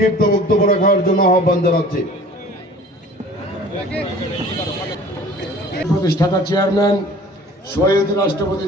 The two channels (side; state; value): both; normal; correlation 0.47